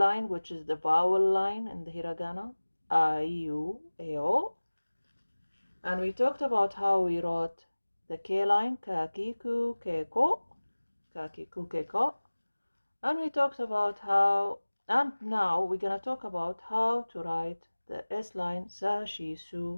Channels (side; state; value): both; inverted; correlation -1.00